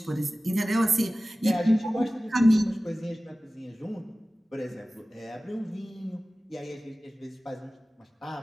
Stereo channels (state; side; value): normal; both; correlation 0.97